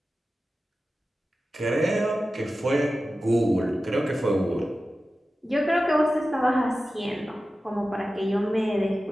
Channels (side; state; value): both; normal; correlation 0.94